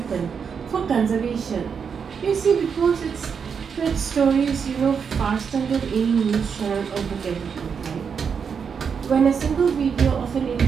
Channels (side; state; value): left; quieter; 6.5 dB